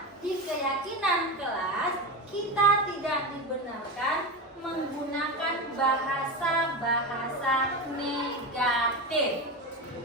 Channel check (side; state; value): both; normal; correlation 0.20